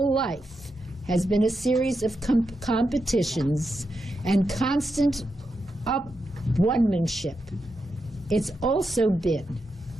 life has been a series of competitions and constant one-manship, it's also been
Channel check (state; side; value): normal; both; correlation 0.86